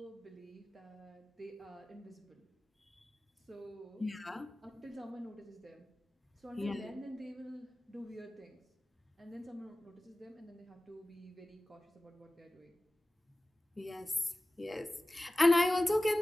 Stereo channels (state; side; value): normal; both; correlation 0.97